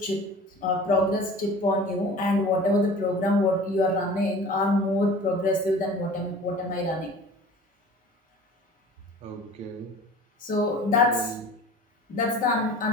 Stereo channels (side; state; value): both; normal; correlation 0.42